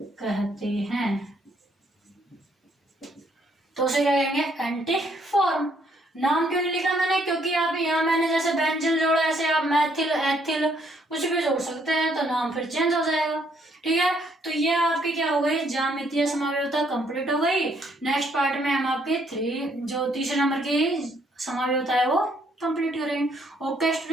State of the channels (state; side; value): normal; both; correlation 0.69